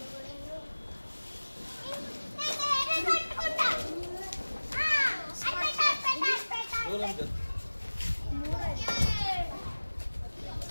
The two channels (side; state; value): both; inverted; correlation -1.00